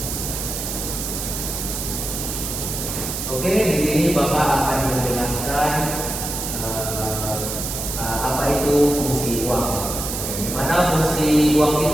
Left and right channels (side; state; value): right; noise; hiss, 4 dB below the sound